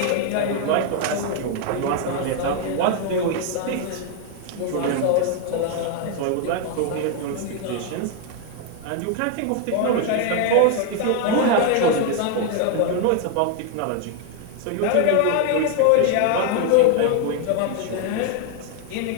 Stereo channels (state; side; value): different; both; correlation 0.00